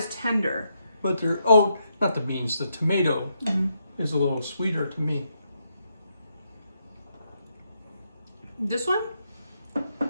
tender. But they're, oh, not the beans, the tomato is a little sweeter to me. This one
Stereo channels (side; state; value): both; inverted; correlation -0.80